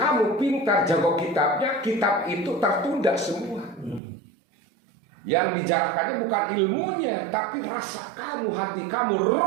pintar jago kitabnya, kitab itu tertunda semua. Yang dijarahkannya bukan ilmunya, tapi rasa kamu, hati kamu,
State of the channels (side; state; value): left; drops out; at 4.0 s